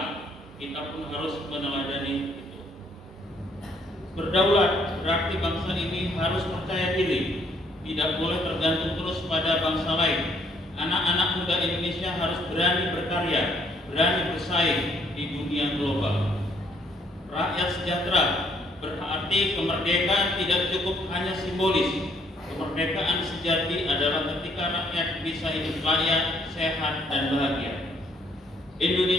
Kita pun harus meneladani itu. Berdaulat berarti bangsa ini harus percaya diri, tidak boleh tergantung terus pada bangsa lain. Anak-anak muda Indonesia harus berani berkarya, berani bersaing di dunia global. Rakyat sejahtera berarti kemerdekaan tidak cukup hanya simbolis. Kemerdekaan sejati adalah ketika rakyat bisa hidup layak, sehat, dan bahagia.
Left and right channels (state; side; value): normal; both; correlation 0.67